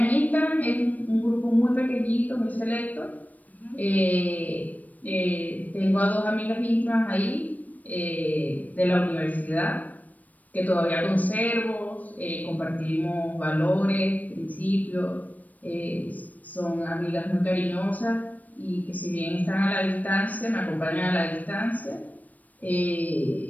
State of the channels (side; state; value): right; late; 0.076 ms